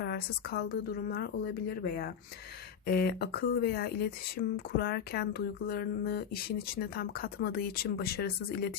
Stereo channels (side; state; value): right; quieter; 7.7 dB